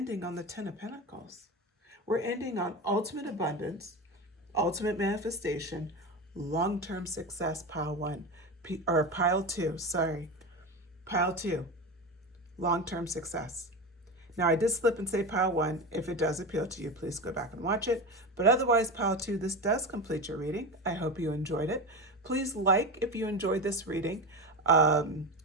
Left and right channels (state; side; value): normal; both; correlation 0.22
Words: on the 10 of Pentacles. We're ending on ultimate abundance, ultimate manifestation, long-term success, pile 1, or pile 2, sorry. Pile 2, long-term success. Now, I did slip and say pile 1. If it does appeal to you, please go back and watch it. But otherwise, pile 2, this does complete your reading. I hope you enjoyed it. Please like if you enjoyed this reading. Go